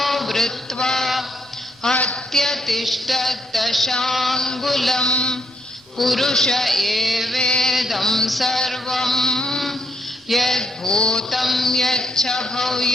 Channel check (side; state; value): both; normal; correlation 0.74